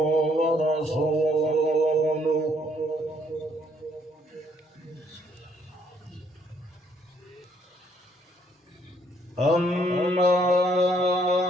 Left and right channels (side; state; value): both; normal; correlation 0.67